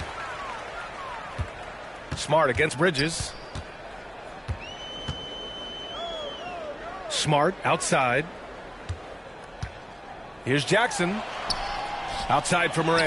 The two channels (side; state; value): both; identical; correlation 1.00